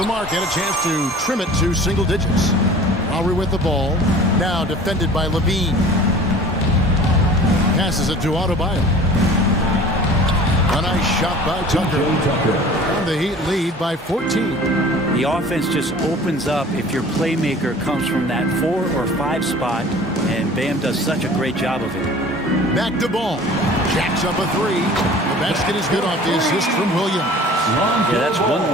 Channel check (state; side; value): normal; both; correlation 0.45